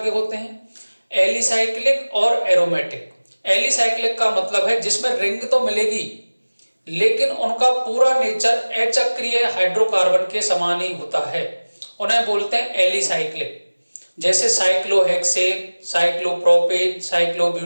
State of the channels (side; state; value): both; inverted; correlation -1.00